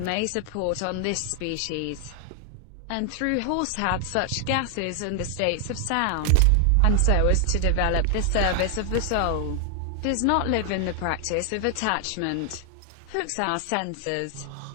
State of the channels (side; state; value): both; different; correlation 0.00